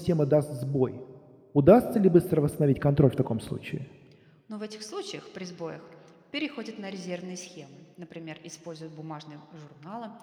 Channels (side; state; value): both; identical; correlation 1.00